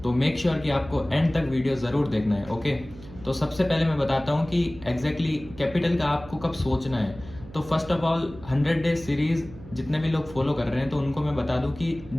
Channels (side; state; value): right; noise; hum, 17 dB below the sound